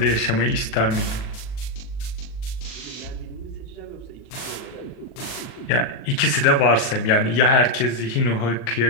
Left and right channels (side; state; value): right; late; 39 ms